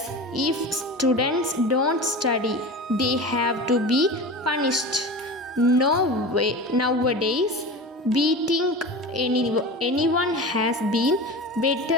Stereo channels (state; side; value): normal; both; correlation 0.31